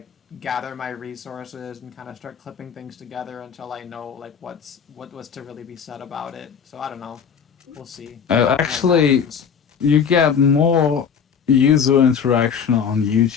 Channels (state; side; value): quieter; right; 7.0 dB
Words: gather my resources and kind of start clipping things together until I know like what was to really be said about it. So I don't know. We'll see what Actually, happens. you get more user interaction on